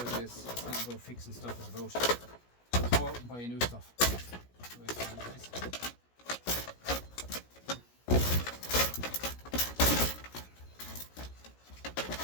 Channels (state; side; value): late; right; 17 ms